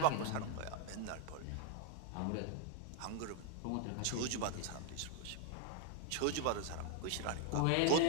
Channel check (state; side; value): different; both; correlation 0.00